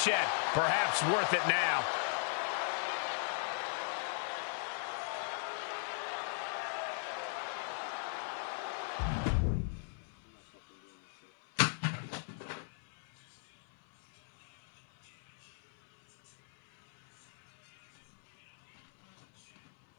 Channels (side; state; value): right; silent; 52 dB below the other